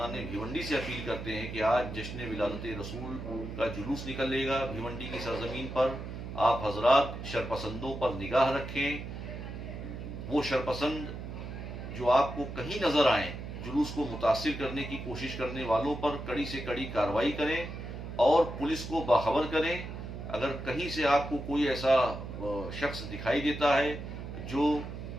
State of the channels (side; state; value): right; noise; hum, 8 dB below the sound